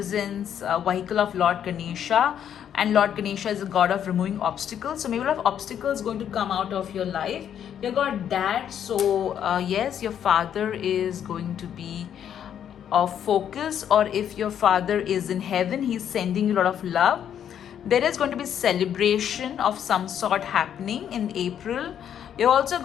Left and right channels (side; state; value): right; quieter; 9.4 dB